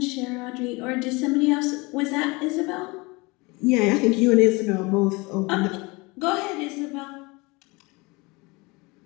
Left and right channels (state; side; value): quieter; right; 25.3 dB